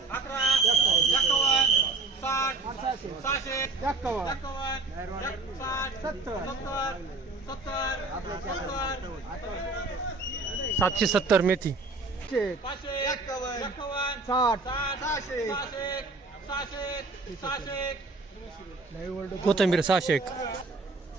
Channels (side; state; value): left; quieter; 3.6 dB